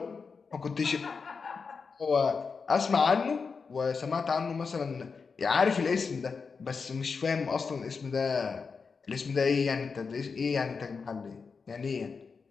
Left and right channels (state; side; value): quieter; right; 5.1 dB